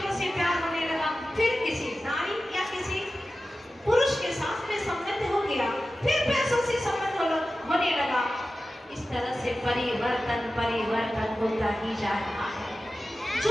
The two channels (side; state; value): both; normal; correlation 0.94